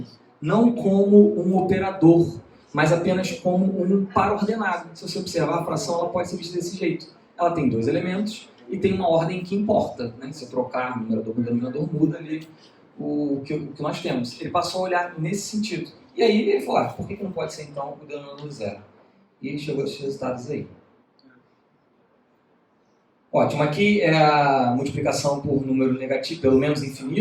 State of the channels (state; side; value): identical; both; correlation 1.00